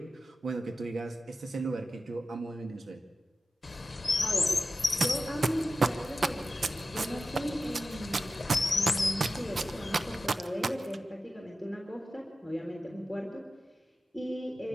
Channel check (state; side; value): normal; both; correlation 0.93